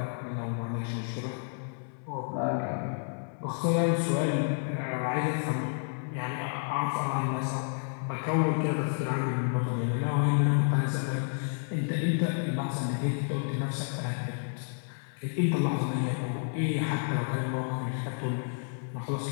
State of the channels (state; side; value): silent; right; 58 dB below the other